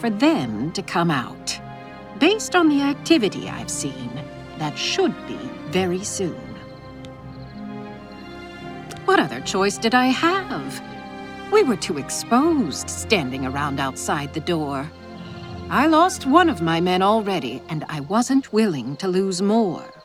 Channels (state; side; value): identical; both; correlation 1.00